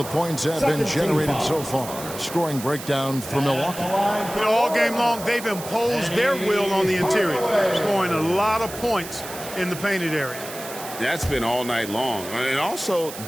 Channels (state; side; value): noise; right; hiss, 12 dB below the sound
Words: points have been generated so far. Scoring breakdown for Milwaukee. You know, all game long, they've imposed their will on the interior, scoring a lot of points in the painted area. That's been all night long. And also